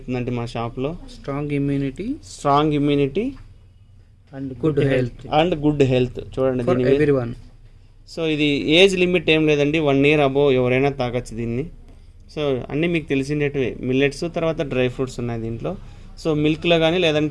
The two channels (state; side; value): identical; both; correlation 1.00